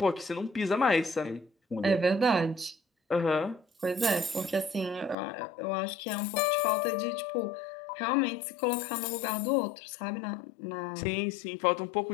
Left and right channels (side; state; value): right; drops out; at 5.2 s